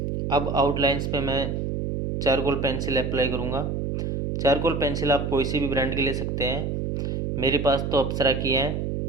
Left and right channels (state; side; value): noise; right; hum, 2 dB below the sound